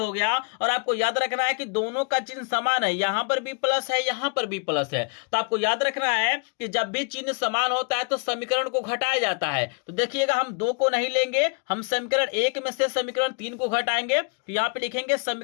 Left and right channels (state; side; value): quieter; right; 36.7 dB